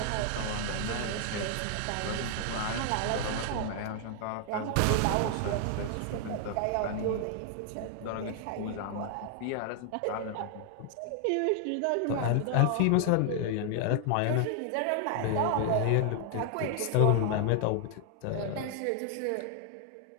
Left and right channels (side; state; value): both; different; correlation 0.00